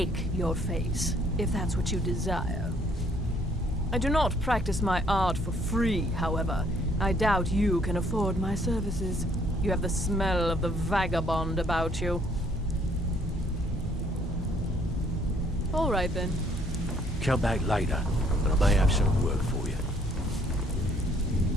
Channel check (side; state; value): both; normal; correlation 0.64